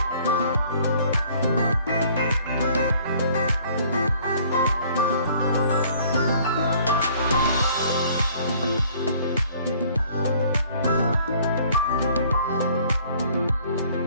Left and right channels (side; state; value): both; inverted; correlation -0.56